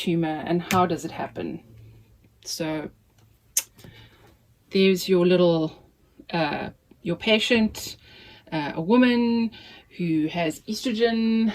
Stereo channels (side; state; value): both; identical; correlation 1.00